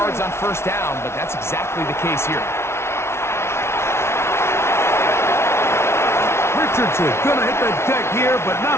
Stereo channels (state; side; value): late; right; 0.13 ms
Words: on first down, but that's exactly the case here. Richardson going to hit the deck here, but